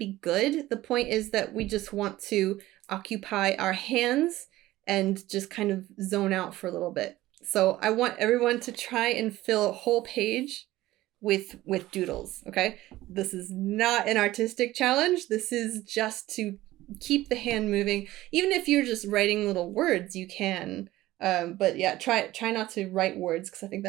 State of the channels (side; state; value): left; quieter; 16.4 dB